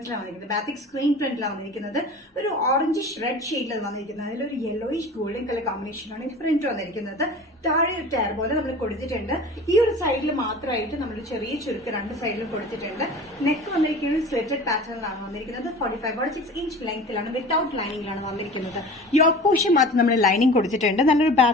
വന്നിരിക്കുന്നത്. ബാത്തിക് സ്ക്രീൻ പ്രിന്റിലാണ് വന്നിരിക്കുന്നത്. ഒരു ഓറഞ്ചിഷ് റെഡ് ഷെയ്ഡിലാണ് വന്നിരിക്കുന്നത്. അതിലൊരു യെല്ലോയിഷ് ഗോൾഡൻ കളർ കോമ്പിനേഷനാണ് ഈ പ്രിന്റ് വന്നിരിക്കുന്നത്. താഴെ ഒരു ടയർ പോലെ നമ്മൾ കൊടുത്തിട്ടുണ്ട്. ഈ ഒരു സൈഡിൽ മാത്രമായിട്ട് നമ്മൾ ചെറിയ ചുരുക്ക് രണ്ട് സൈഡിലും കൊടുത്തിട്ടുണ്ട്. നെക്ക് വന്നിരിക്കുന്നത് സ്ലിറ്റഡ് പാറ്റേണിലാണ് വന്നിരിക്കുന്നത്. 45-46 ഇഞ്ച് ലെങ്ത്തിലാണ്. വിത്തൌട്ട് ലൈനിങ്ങിലാണ് വന്നിരിക്കുന്നത്. യോക്ക് പോർഷൻ മാത്രം നമ്മൾ ലൈനിങ് കൊടുത്തിട്ടുണ്ട്. നല്ലൊരു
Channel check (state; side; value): normal; both; correlation 0.39